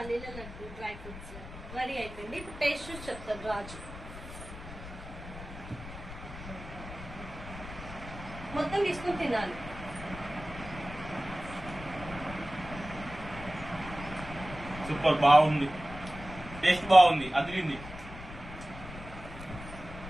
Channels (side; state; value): left; noise; rumble, 12 dB below the sound